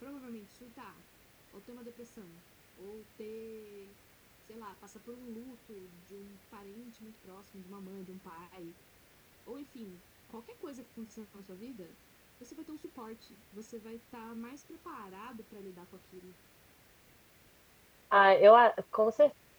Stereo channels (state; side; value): identical; both; correlation 1.00